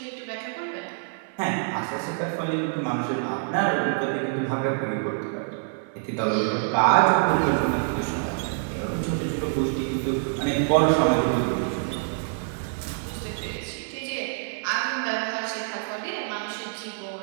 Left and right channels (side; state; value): left; silent; 61 dB below the other